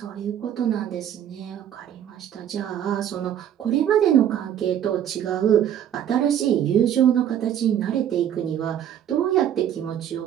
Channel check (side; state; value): left; quieter; 10.1 dB